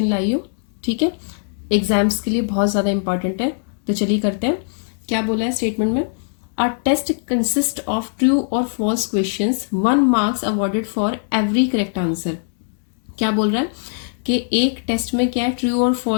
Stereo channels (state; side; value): silent; right; digital silence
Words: लाई हूँ। ठीक है, एग्जाम्स के लिए बहुत ज़्यादा इंपॉर्टेंट है। तो चलिए करते हैं। क्या बोला है स्टेटमेंट में? A test consist of true और false questions, 1 marks awarded for every correct answer. क्या बोल रहा है कि एक टेस्ट में क्या है, ट्रू और